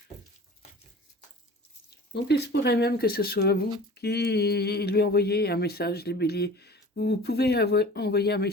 Donc il se pourrait même que ce soit vous qui lui envoyez un message, les béliers. Vous pouvez envoyer un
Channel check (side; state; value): both; normal; correlation 0.41